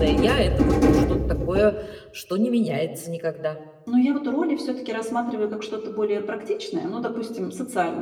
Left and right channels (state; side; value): identical; both; correlation 1.00